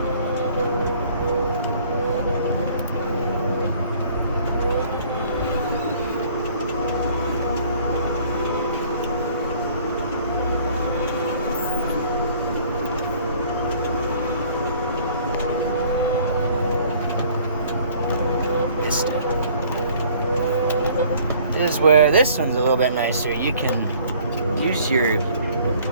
This is where this one's a little bit nicer. You can use your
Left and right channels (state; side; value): inverted; both; correlation -0.55